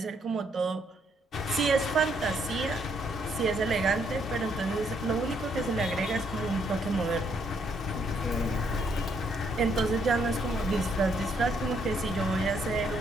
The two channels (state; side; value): normal; both; correlation 0.72